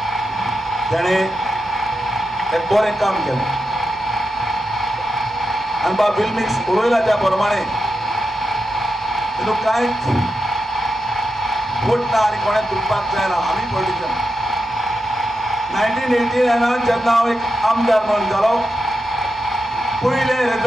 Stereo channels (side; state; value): both; normal; correlation 0.88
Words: तेणें एक बरें काम केलें आनी बाब बिल्मिक्स उलयला त्या प्रमाणे तितूंत कांयच फूट ना आनी कोणें दुखपाक जायना. आमी पॉलिटिशन 1989 जेन्ना हांव एक आमदार म्हणून जालो पयलें